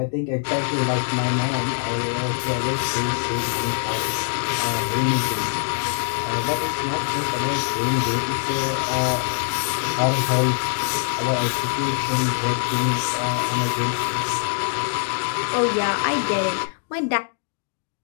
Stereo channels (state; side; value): silent; right; digital silence